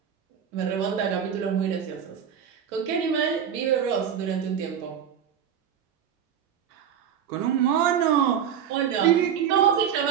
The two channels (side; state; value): left; quieter; 8.6 dB